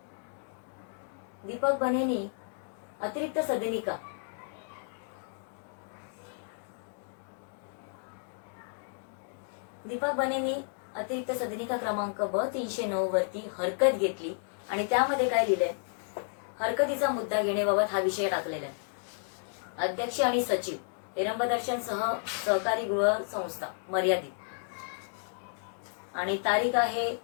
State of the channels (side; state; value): right; silent; digital silence